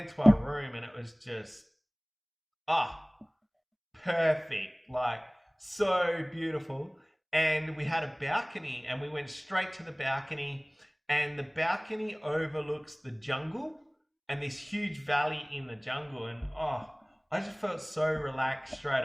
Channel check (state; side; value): identical; both; correlation 1.00